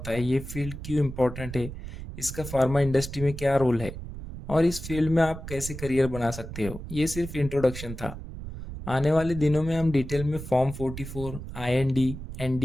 है, ये फील्ड क्यों इम्पोर्टेंट है, इसका फार्मा इंडस्ट्री में क्या रोल है और इस फील्ड में आप कैसे करियर बना सकते हो। ये सिर्फ इंट्रोडक्शन था। आने वाले दिनों में हम डिटेल में form 44, IND,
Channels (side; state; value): right; noise; rumble, 10 dB below the sound